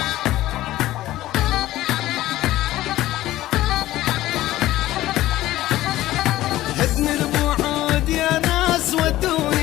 البعود يا ناس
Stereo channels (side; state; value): right; quieter; 15.5 dB